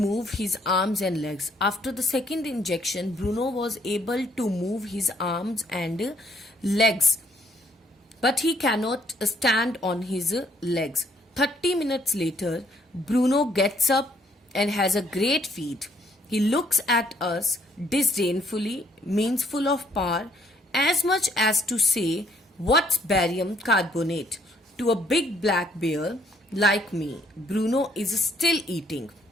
move his arms and legs. After the second injection, Bruno was able to move his arms and legs, but he cannot stand on his legs. 30 minutes later, Bruno gets up and has a great feat. He looks at us disdainfully, means full of power, as much as to say, what's barium carbonate? To a big black bear like me. Bruno is still eating.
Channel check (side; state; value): both; normal; correlation 0.66